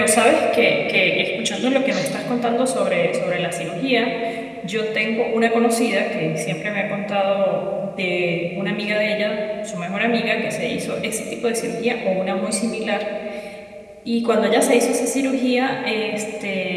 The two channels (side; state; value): both; identical; correlation 1.00